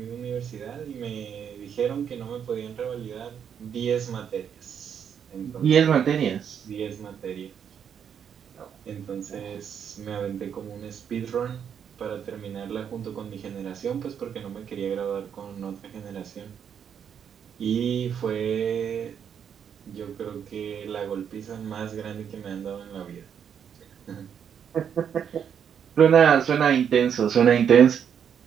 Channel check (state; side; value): quieter; left; 8.0 dB